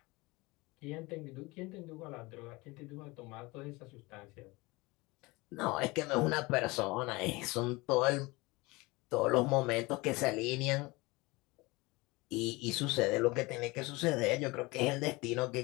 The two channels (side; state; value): right; quieter; 23.3 dB